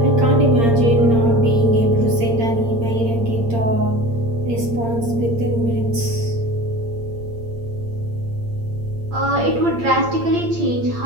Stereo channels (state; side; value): late; left; 8.7 ms